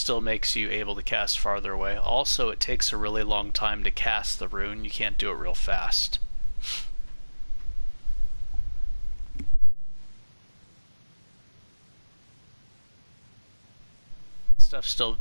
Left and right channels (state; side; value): inverted; both; correlation -1.00